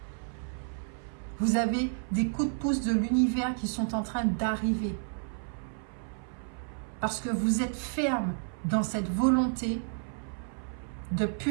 Vous avez des coups de pouce de l'univers qui sont en train d'arriver. Parce que vous êtes ferme dans cette volonté de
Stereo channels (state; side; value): silent; left; 57 dB below the other